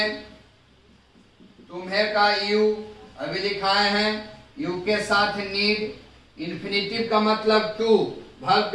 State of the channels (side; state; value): both; identical; correlation 1.00